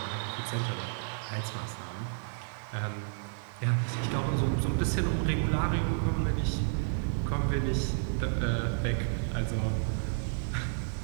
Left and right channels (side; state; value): left; silent; digital silence